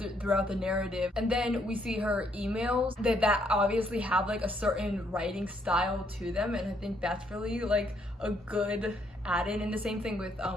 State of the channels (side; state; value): both; normal; correlation 0.71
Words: throughout the narrative, and then we see her emails that obviously have like a certain writing style to them, and I think that's really like a good add-in. And the same thing with